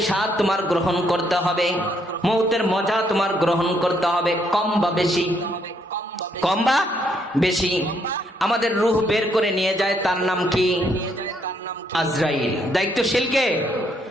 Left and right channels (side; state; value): both; normal; correlation 0.72